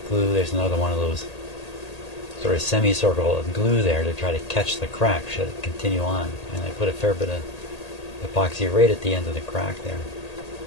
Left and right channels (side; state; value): right; late; 1.8 ms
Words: glue. There's another one of those sort of semicircle of glue there to try to catch the crack should it continue on. And I put a fair bit of epoxy right at the end of the crack there.